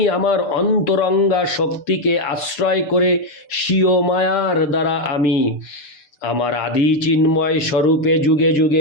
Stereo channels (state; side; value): late; right; 6.7 ms